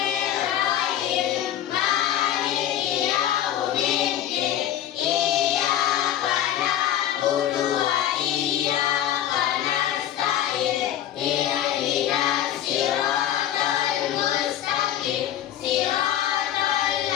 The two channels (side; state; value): right; quieter; 11.4 dB